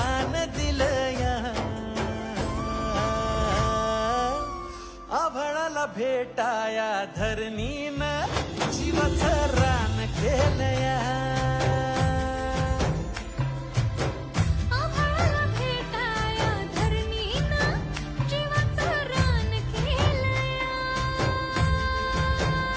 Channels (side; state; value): both; identical; correlation 1.00